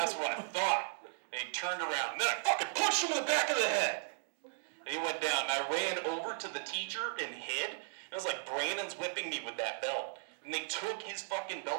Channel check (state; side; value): silent; left; digital silence